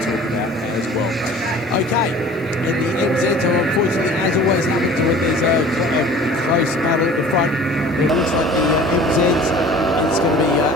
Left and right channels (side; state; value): both; normal; correlation 0.45